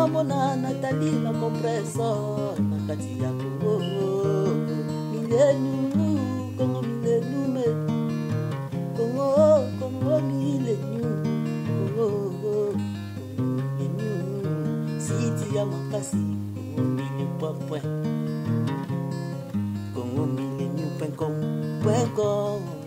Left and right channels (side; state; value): both; identical; correlation 1.00